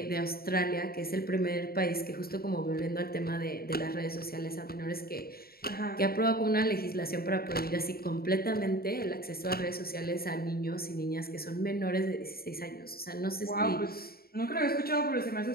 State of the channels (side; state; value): right; late; 0.44 ms